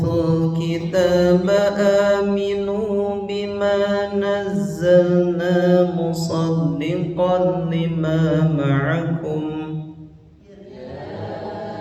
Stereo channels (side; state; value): both; identical; correlation 1.00